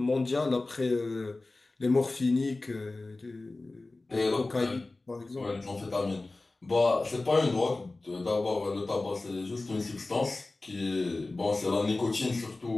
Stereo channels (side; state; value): right; quieter; 3.2 dB